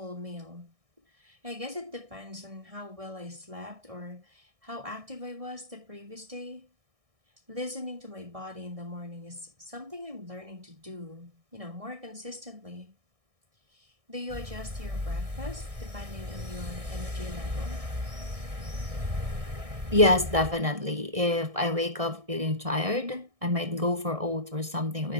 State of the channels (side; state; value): left; late; 1.6 ms